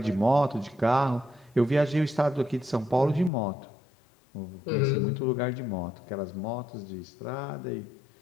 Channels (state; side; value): drops out; right; at 3.3 s